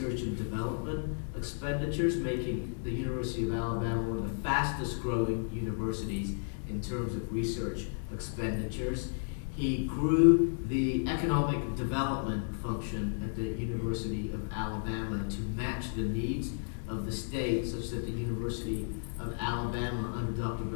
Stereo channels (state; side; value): silent; right; digital silence